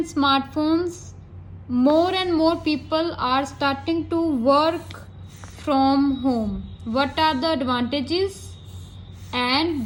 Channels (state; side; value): identical; both; correlation 1.00